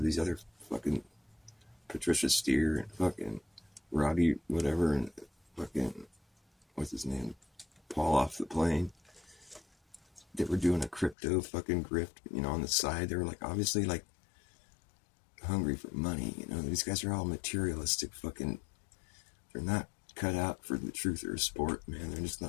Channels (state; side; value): drops out; right; at 11.2 s